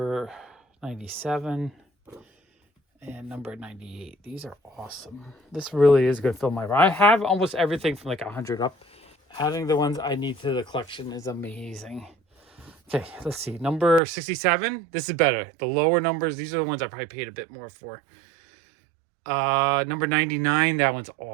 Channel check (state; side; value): drops out; left; at 14.0 s